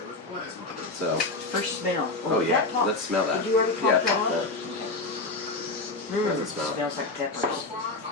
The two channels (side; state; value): right; quieter; 3.3 dB